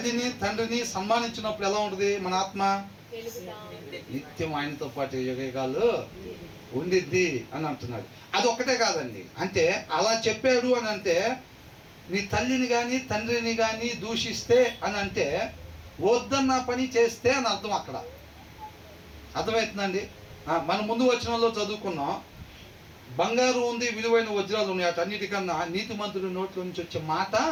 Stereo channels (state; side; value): identical; both; correlation 1.00